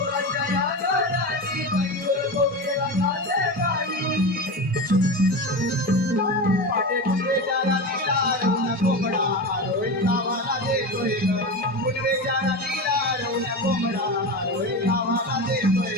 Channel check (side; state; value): both; normal; correlation 0.23